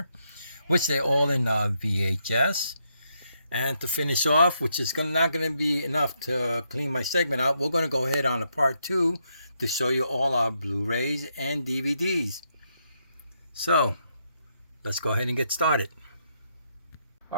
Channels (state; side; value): inverted; both; correlation -0.78